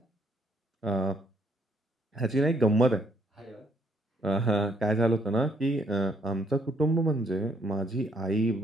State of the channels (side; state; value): both; normal; correlation 0.69